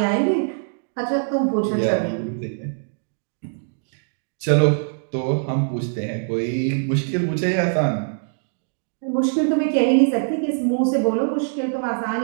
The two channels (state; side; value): silent; left; digital silence